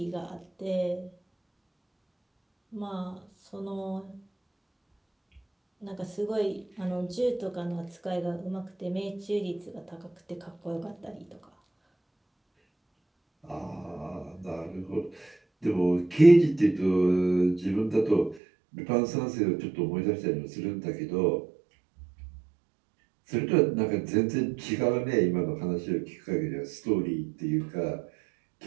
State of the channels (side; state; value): left; drops out; at 18.4 s